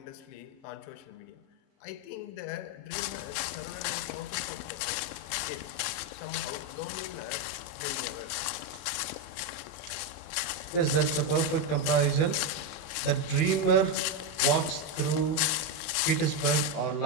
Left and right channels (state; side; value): late; right; 24 ms